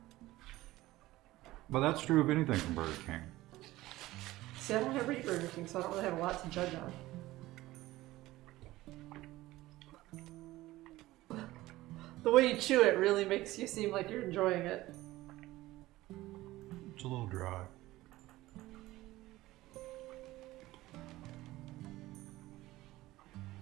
that's true of anything from Burger King. See, I don't have Burger King, so I don't really have a lot to judge on. The way you chew it really makes you seem like you're enjoying it. It's a little dry.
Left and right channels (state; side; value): quieter; left; 17.4 dB